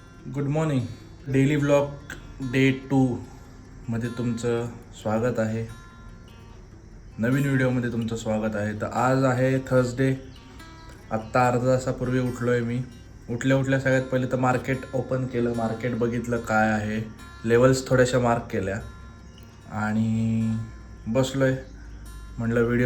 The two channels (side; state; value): both; identical; correlation 1.00